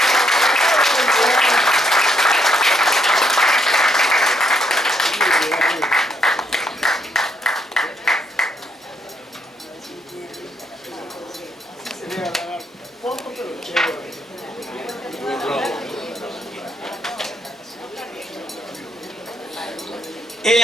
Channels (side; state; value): both; normal; correlation 0.74